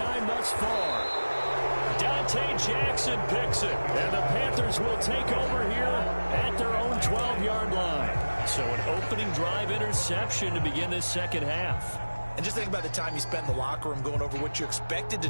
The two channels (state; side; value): inverted; both; correlation -1.00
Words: thus far. Dante Jackson picks it. And the Panthers will take over here at their own 12-yard line. So an opening drive interception to begin this second half. And just think about the time you spent in the locker room going over what you expected to